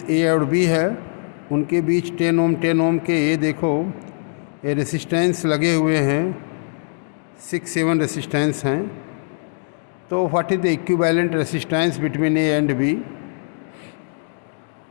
A और B है, उनके बीच 10 ओम के ये देखो ये रेसिस्टेंस लगे हुए हैं, 6-7 रेसिस्टेंस हैं। तो what is the equivalent resistance between A and B।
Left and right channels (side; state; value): right; silent; digital silence